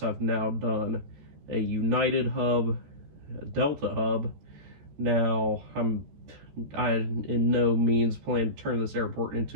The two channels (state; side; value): late; left; 14 ms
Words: I've now done a United hub, a Delta hub. Now, I in no means plan to turn this airport